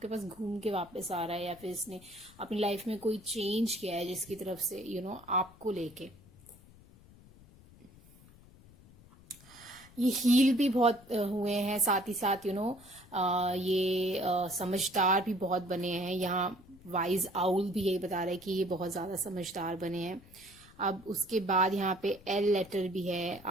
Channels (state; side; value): noise; left; rumble, 23 dB below the sound